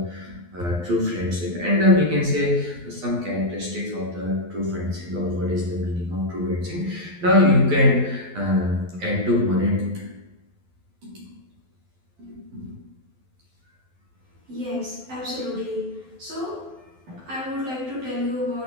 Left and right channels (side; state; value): left; late; 12 ms